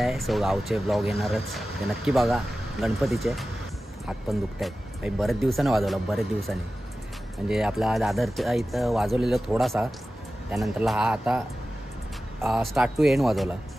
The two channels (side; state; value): both; normal; correlation 0.95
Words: सो गावचे ब्लॉग येणारच, ते नक्की बघा. गणपतीचे हात पण दुखत आहेत काही, बरेच दिवसाने वाजवलं, बरेच दिवसांनी. म्हणजे आपला दादरच्या इथं वाजवलेलं थोडासा, त्यानंतरला हा आता स्टार्ट टू एंड वाजवला